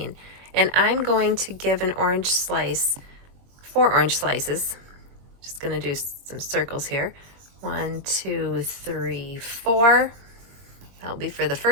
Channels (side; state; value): left; late; 22 ms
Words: and I'm going to give an orange slice, 4 orange slices. Just going to do some circles here. 1, 2, 3, 4. That'll be for the